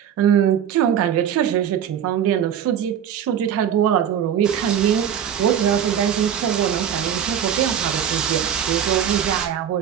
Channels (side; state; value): left; quieter; 9.1 dB